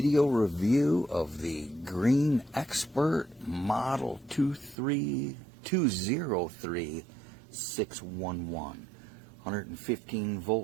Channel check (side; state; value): left; drops out; at 4.8 s